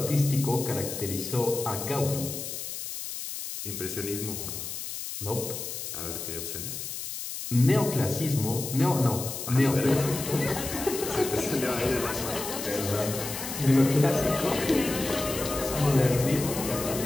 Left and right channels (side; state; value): left; noise; hiss, 7 dB below the sound